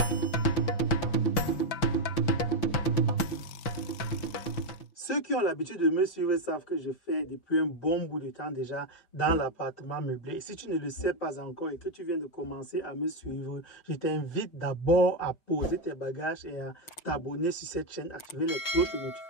Ceux qui ont l'habitude de me suivre savent que je fais depuis un bon bout de temps déjà dans l'appartement meublé. Et si tu ne le sais pas encore et que tu viens de commencer à me suivre, je t'invite d'abord à poser tes bagages et à t'abonner sur cette chaîne, activer les cloches de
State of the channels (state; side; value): late; right; 5.9 ms